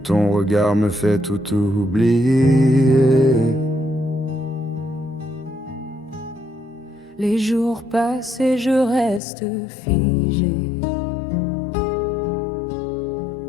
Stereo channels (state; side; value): drops out; right; at 9.2 s